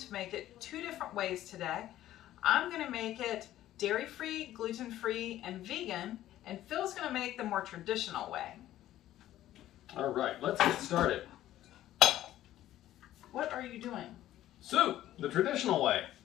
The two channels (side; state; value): right; quieter; 13.5 dB